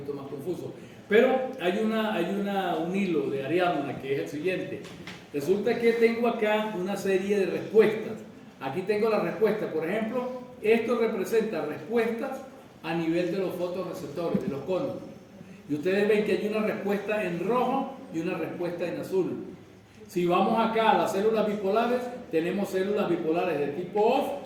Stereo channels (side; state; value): both; identical; correlation 1.00